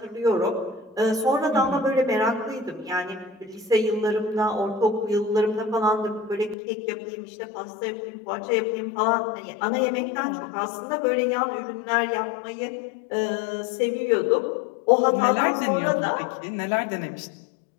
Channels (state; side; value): drops out; right; at 6.6 s